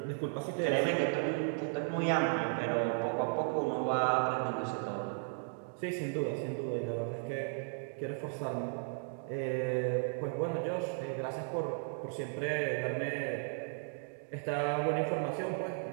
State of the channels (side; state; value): left; silent; 54 dB below the other